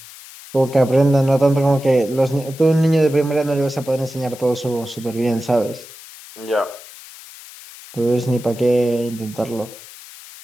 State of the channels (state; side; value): noise; left; hiss, 18 dB below the sound